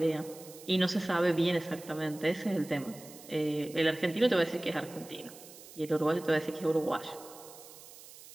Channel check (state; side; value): noise; right; hiss, 18 dB below the sound